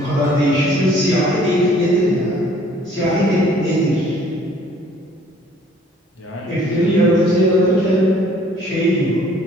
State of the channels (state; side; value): normal; both; correlation 0.57